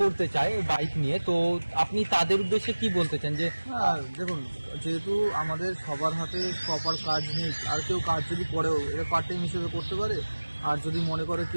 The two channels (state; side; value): inverted; both; correlation -1.00